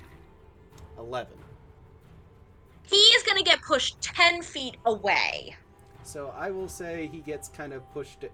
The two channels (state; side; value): identical; both; correlation 1.00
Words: 11. He is gonna get pushed 10 feet away. So I will say he gets pushed